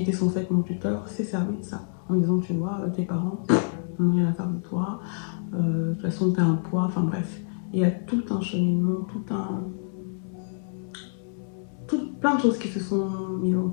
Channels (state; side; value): silent; right; 60 dB below the other